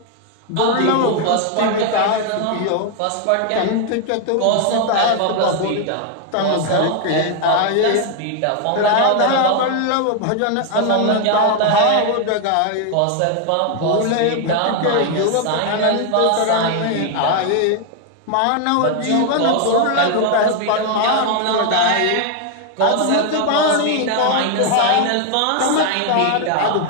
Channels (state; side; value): different; both; correlation 0.01